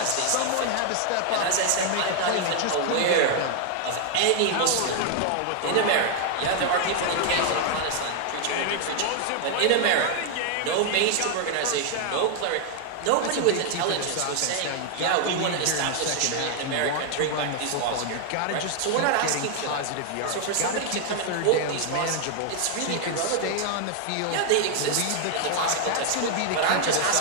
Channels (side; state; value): both; different; correlation 0.00